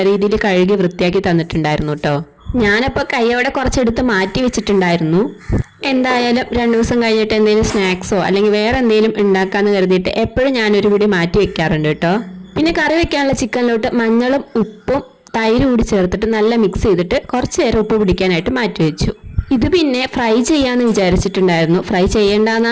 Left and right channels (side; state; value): both; identical; correlation 1.00